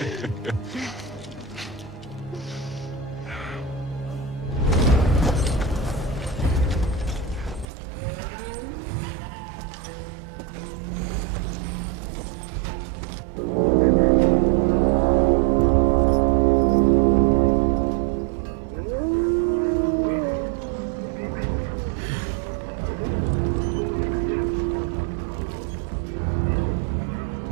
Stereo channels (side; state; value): left; drops out; at 7.7 s